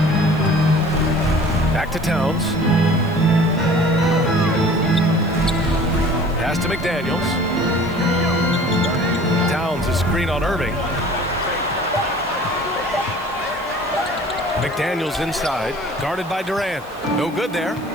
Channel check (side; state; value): right; noise; hiss, 25 dB below the sound